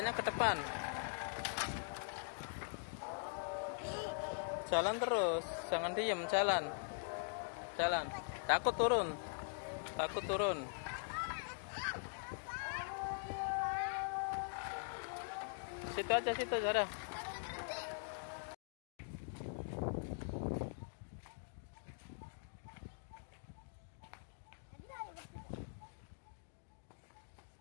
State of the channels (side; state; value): right; silent; digital silence